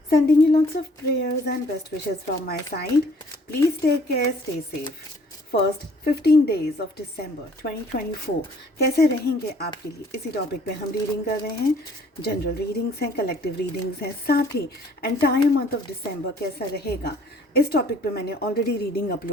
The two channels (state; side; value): normal; both; correlation 0.58